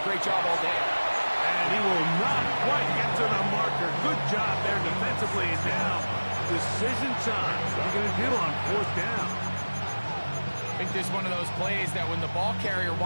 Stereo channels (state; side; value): inverted; both; correlation -1.00